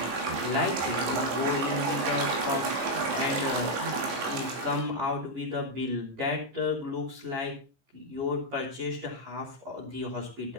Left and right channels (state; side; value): late; left; 15 ms